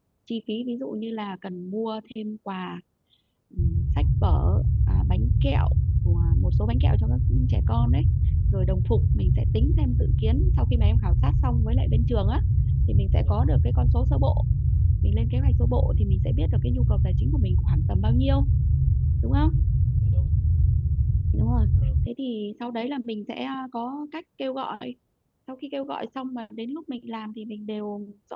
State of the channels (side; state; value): both; identical; correlation 1.00